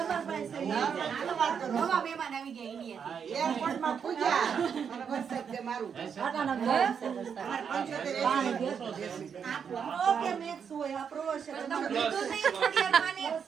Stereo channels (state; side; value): quieter; left; 7.1 dB